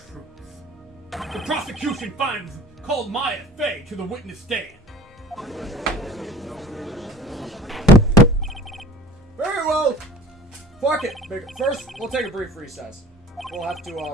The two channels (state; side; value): normal; both; correlation 0.46